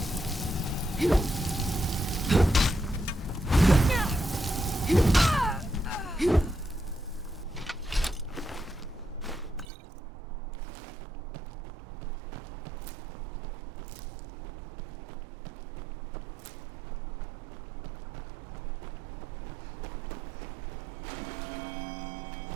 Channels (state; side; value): drops out; left; at 9.7 s